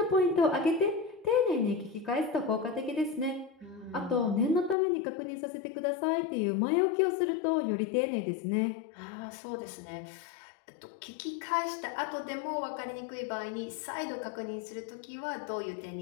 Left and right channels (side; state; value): right; drops out; at 4.8 s